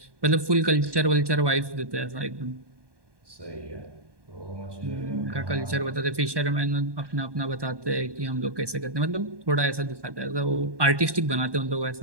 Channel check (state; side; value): late; left; 1.2 ms